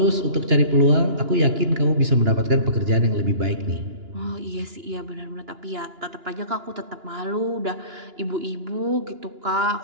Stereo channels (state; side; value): late; left; 2.9 ms